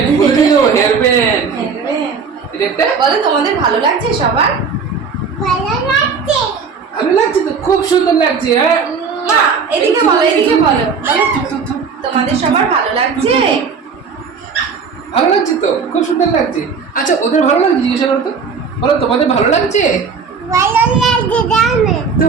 বলে দিল হেয়ার ব্যান্ড। এটা একটা বলো তোমাদের ভালো লাগছে সবার? ভালো লাগছে তো, খুব সুন্দর লাগছে। হ্যাঁ মা এদিকে বলো তোমাদের সবার ভালো লাগছে? ভালো লাগছে তো, খুব সুন্দর লাগছে। আচ্ছা ওদের ভালো লাগছে জিজ্ঞাসা করো তো, বলো তোমাদের ভালো লাগছে?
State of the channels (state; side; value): quieter; left; 5.6 dB